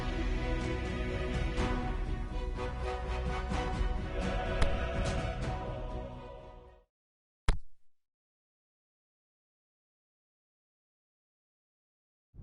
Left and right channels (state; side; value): identical; both; correlation 1.00